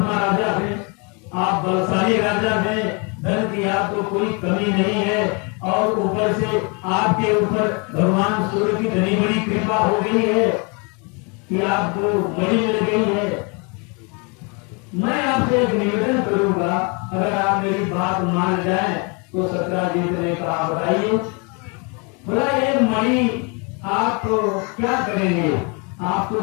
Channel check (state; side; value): quieter; right; 33.0 dB